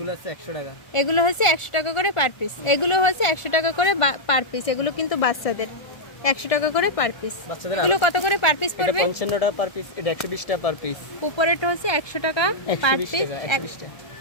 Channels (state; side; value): late; right; 1.4 ms